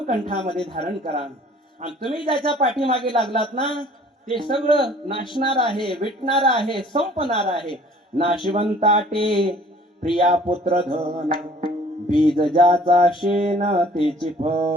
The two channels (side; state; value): both; normal; correlation 0.53